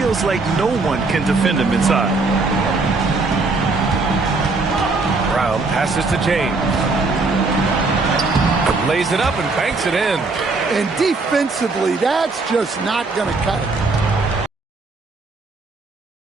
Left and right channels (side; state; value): left; quieter; 3.7 dB